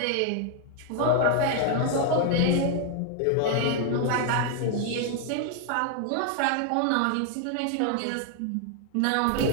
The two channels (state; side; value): different; both; correlation 0.00